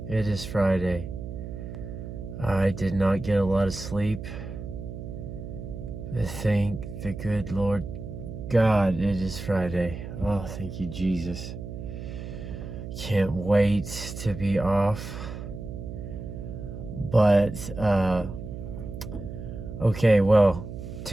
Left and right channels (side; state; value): right; noise; hum, 9 dB below the sound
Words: It is Friday. I did not get a lot of sleep. Thank the good Lord God, it is Friday. Oh, thank you, Jesus. Can't wait to be off. But, okay, well,